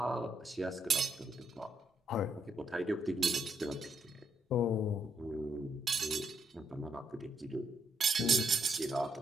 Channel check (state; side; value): normal; both; correlation 0.76